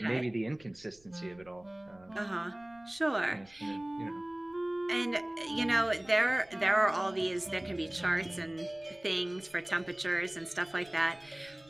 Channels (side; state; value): right; noise; rumble, 28 dB below the sound